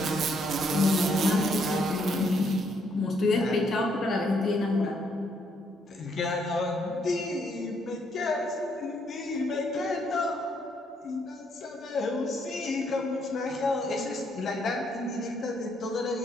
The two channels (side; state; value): both; normal; correlation 0.72